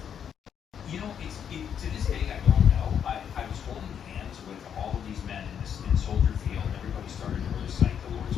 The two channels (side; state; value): right; quieter; 8.3 dB